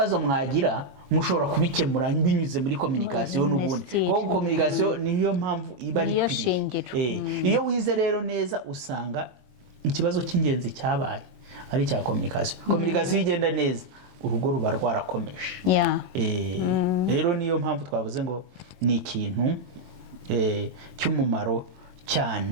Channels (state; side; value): late; left; 22 ms